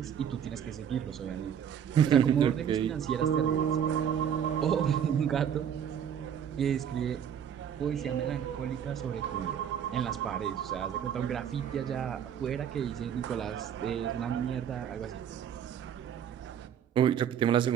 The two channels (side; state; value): left; quieter; 8.7 dB